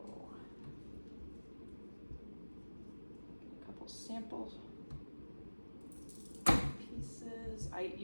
a couple sample pieces. I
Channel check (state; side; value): inverted; both; correlation -1.00